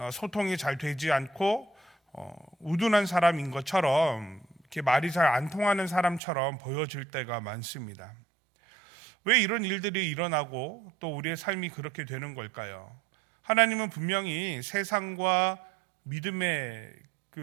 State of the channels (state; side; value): drops out; left; at 6.2 s